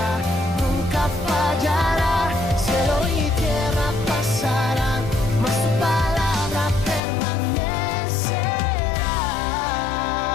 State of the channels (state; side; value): drops out; right; at 7.0 s